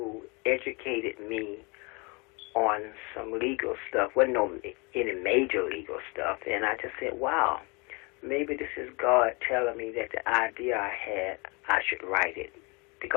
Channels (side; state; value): right; quieter; 29.4 dB